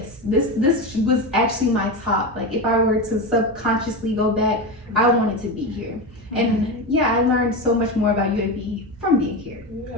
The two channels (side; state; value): both; normal; correlation 0.18